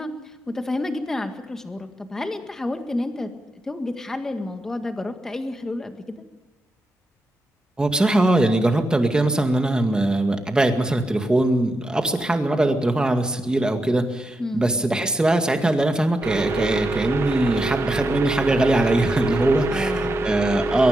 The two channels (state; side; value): normal; both; correlation 0.86